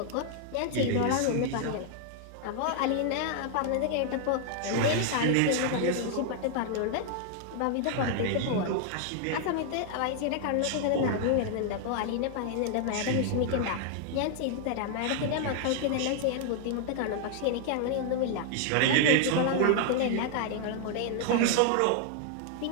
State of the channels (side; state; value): both; different; correlation 0.00